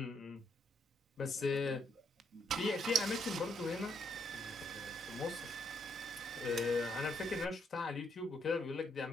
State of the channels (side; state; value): both; normal; correlation 0.74